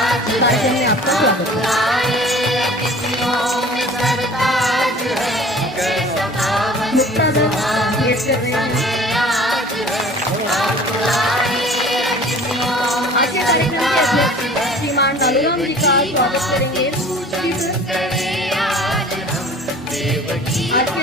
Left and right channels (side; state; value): both; normal; correlation 0.46